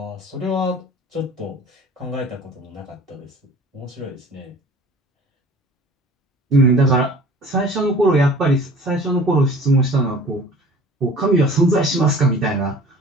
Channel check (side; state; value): both; normal; correlation 0.46